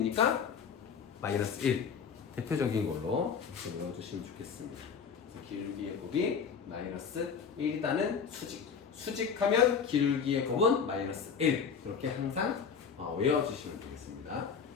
마이너스 1. 대표적인 걸로 이렇게 외워주시면 좋겠습니다. 기울기의 곱이 마이너스 1이다는 수직. 수직하면 기울기의 곱은 마이너스 1. 그렇게 항상 외워주시면 되겠습니다.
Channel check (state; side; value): quieter; right; 6.5 dB